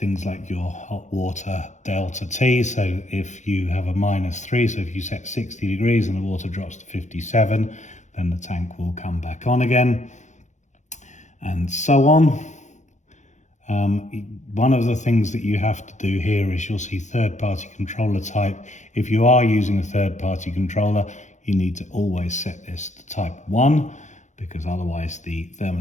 things like your hot water delta T. So if you have a -3, so if you set 60 degrees and the water drops to 57, then the tank will come back on again. And so on. One of the things that you have to do here is you'll see third-party controller type. If you are using a third-party controller, you need to always set this to type 1, because otherwise the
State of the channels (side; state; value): right; late; 0.35 ms